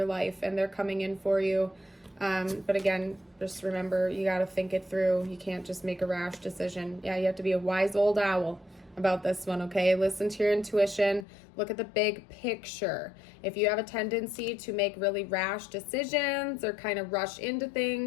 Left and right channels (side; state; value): right; drops out; at 11.2 s